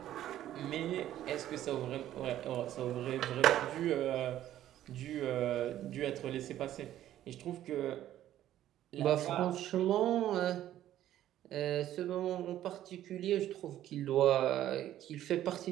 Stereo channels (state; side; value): quieter; left; 12.5 dB